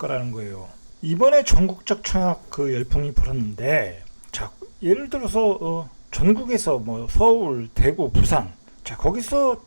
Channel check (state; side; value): inverted; both; correlation -1.00